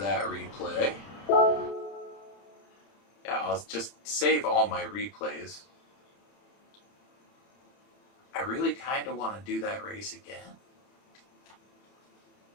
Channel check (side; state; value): right; late; 30 ms